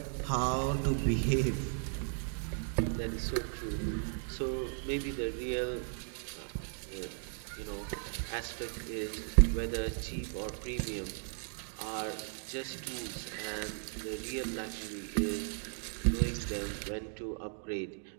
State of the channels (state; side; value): silent; left; 54 dB below the other